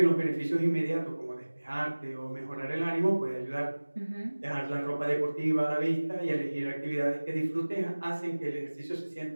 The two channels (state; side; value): inverted; both; correlation -1.00